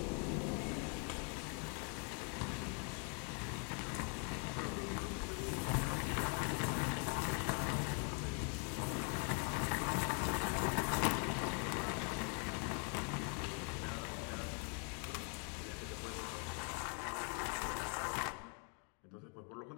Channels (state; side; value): quieter; right; 37.0 dB